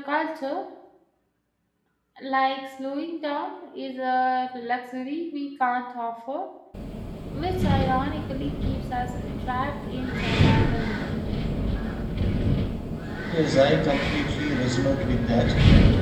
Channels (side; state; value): both; identical; correlation 1.00